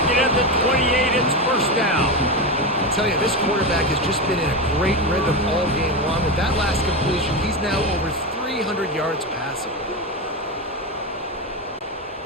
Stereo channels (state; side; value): normal; both; correlation 0.16